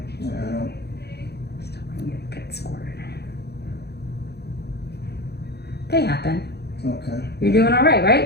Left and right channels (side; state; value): right; late; 0.48 ms